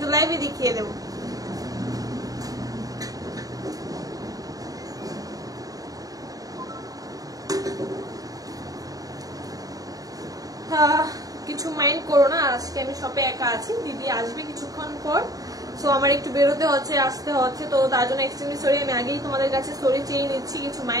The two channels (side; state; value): left; late; 0.18 ms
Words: লাইভে দেখিয়ে দেবো। কিছু মাইন্ড করো না, আজকে আমি শপে একা আছি, দিদি আসবে কিছুক্ষণ পর, সো আমার একটু বেরোতে হচ্ছে, আসতে হচ্ছে, তো তার জন্য এক্সট্রিমলি সরি। আমি আগেই তোমাদের কাছে সরি চেয়ে নিচ্ছি, কিছু